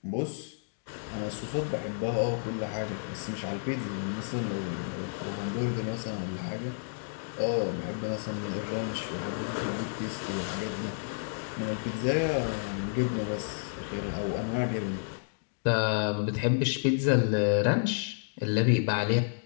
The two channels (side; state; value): right; silent; digital silence